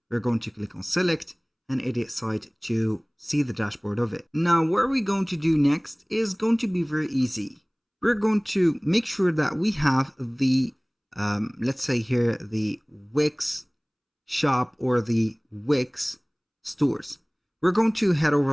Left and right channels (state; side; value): identical; both; correlation 1.00